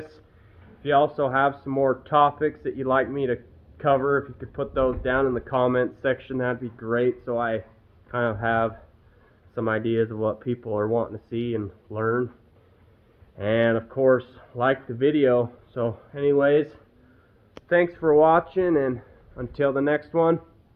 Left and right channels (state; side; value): identical; both; correlation 1.00